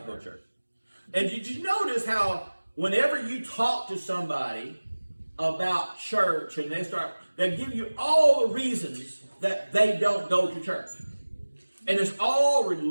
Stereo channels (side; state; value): both; inverted; correlation -1.00